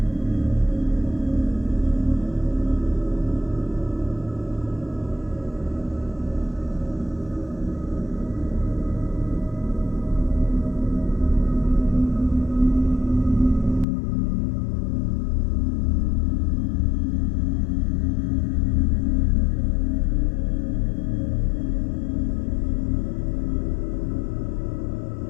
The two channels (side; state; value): right; drops out; at 13.9 s